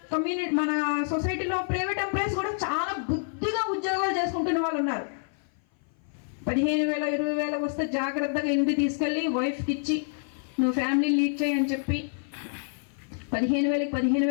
మన సొసైటీలో ప్రైవేట్ ఎంప్లాయీస్ కూడా చాలా బుద్ధిగా ఉద్యోగాలు చేసుకుంటున్న వాళ్ళు ఉన్నారు. 15,000 20,000 వస్తే జాగ్రత్తగా ఇంటికి తీసుకెళ్ళి వైఫ్కి ఇచ్చి నువ్వు ఫ్యామిలీ లీడ్ చేయి అని చెప్పి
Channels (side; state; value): right; silent; 56 dB below the other